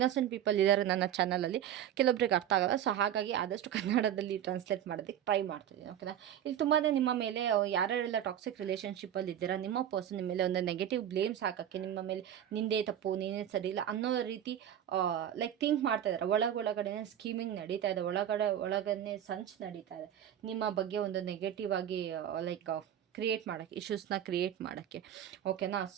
ಪೀಪಲ್ ಇದ್ದಾರೆ ನನ್ನ ಚಾನಲಲ್ಲಿ, ಕೆಲವೊಬ್ರಿಗೆ ಅರ್ಥ ಆಗೋಲ್ಲ. ಸೊ ಹಾಗಾಗಿ ಆದಷ್ಟು ಕನ್ನಡದಲ್ಲಿ ಟ್ರಾನ್ಸ್ಲೇಟ್ ಮಾಡೋದಕ್ಕೆ ಟ್ರೈ ಮಾಡ್ತಿದ್ದೀನಿ, ಓಕೆನಾ? ಇಲ್ಲಿ ತುಂಬಾ ನಿಮ್ಮ ಮೇಲೆ ಯಾರ್ಯಾರೆಲ್ಲ ಟಾಕ್ಸಿಕ್ ರಿಲೇಷನ್ಶಿಪ್ಪಲ್ಲಿ ಇದ್ದೀರಾ ನಿಮ್ಮ ಪರ್ಸನ್ ನಿಮ್ಮ ಮೇಲೆ ಒಂದು ನೆಗೆಟಿವ್ ಬ್ಲೇಮ್ಸ್ ಹಾಕೋಕ್ಕೆ, ನಿಮ್ಮ ಮೇಲೆ ನಿಂದೇ ತಪ್ಪು, ನೀನೇ ಸರಿ ಇಲ್ಲ ಅನ್ನೋ ರೀತಿ ಲೈಕ್ ಥಿಂಕ್ ಮಾಡ್ತಾ ಇದ್ದಾರೆ. ಒಳಗಡೆ ಸ್ಕೀಮಿಂಗ್ ನಡೀತಾ ಇದೆ, ಒಳಗನೆ ಸಂಚ್ ನಡೀತಾ ಇದೆ ನಿಮ್ಮ ಬಗ್ಗೆ ಒಂದು ನೆಗೆಟಿವ್ ಆಗಿ ಲೈಕ್ ಕ್ರಿಯೇಟ್ ಮಾಡೋಕ್ಕೆ, ಇಶ್ಯೂಸ್ನ ಕ್ರಿಯೇಟ್ ಮಾಡೋಕ್ಕೆ, ಓಕೆನಾ?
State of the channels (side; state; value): left; quieter; 10.4 dB